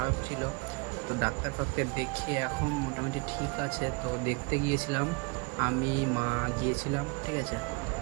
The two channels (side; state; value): left; quieter; 29.7 dB